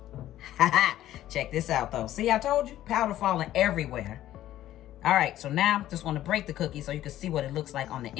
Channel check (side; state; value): right; quieter; 13.3 dB